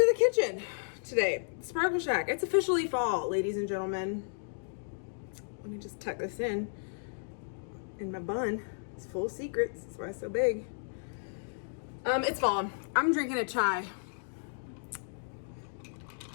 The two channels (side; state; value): right; silent; digital silence